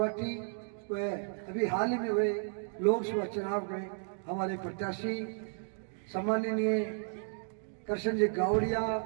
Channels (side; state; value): left; silent; 55 dB below the other